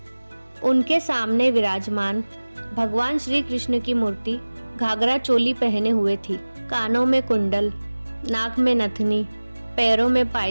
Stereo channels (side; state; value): both; inverted; correlation -1.00